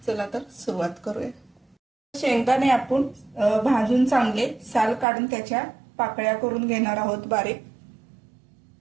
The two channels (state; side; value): drops out; left; at 5.1 s